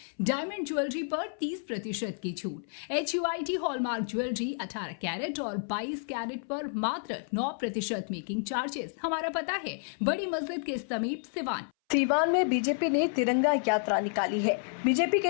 डायमंड ज्वेलरी पर 30% की छूट। HUID हॉलमार्क ज्वेलरी 18 कैरेट और 22 कैरेट पर मात्र 9% मेकिंग चार्जेस। हमारा पता है बड़ी मस्जिद के समीप सिवान। सीवान में बीजेपी ने तिरंगा यात्रा निकाली है। बीजेपी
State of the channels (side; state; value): right; silent; 58 dB below the other